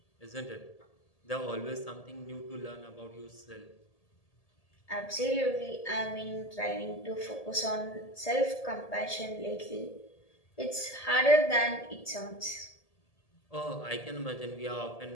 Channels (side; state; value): right; late; 1.8 ms